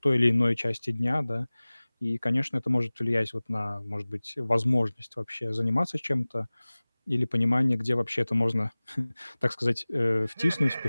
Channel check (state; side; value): inverted; both; correlation -0.99